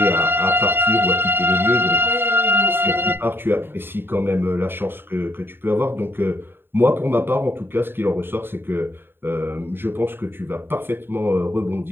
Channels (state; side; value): late; left; 0.10 ms